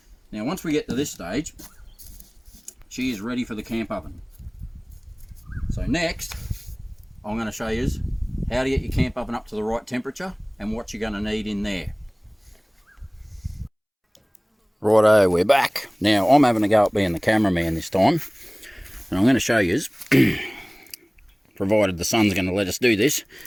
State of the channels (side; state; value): both; identical; correlation 1.00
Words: Now, once we get to this stage, she is ready for the camp oven. So next, I'm going to show you how to get your camp oven up to the right temperature and what you're going to need in there. Righto, we're back. Now, I'm having a go at being the cameraman this time. And I'm going to show you, provided the sun's going to let us do this,